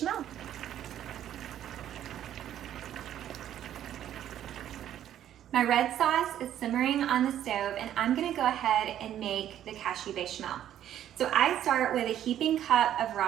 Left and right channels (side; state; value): left; quieter; 11.2 dB